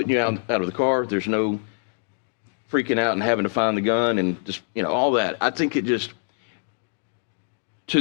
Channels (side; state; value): right; silent; digital silence